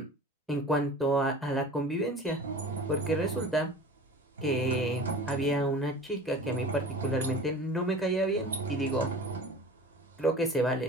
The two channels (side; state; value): both; normal; correlation 0.38